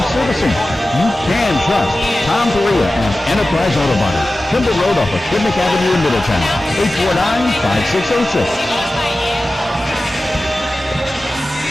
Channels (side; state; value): both; normal; correlation 0.95